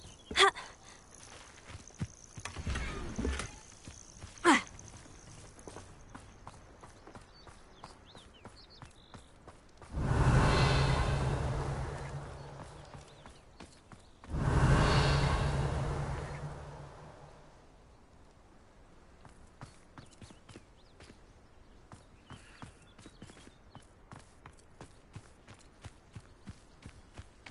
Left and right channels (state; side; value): identical; both; correlation 1.00